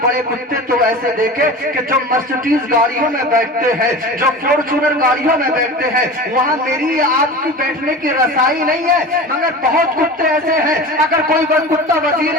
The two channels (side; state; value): both; normal; correlation 0.33